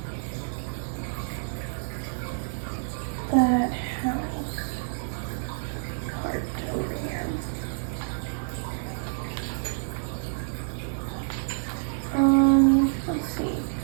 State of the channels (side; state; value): left; silent; 59 dB below the other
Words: that house part over here. Let's see.